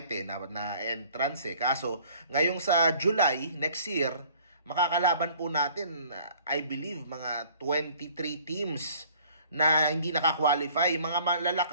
na entrance Kaso ngayong sa July next year, makakalaban po natin I believe mga 23 teams na hindi naka-qualify, mga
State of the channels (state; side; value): inverted; both; correlation -0.54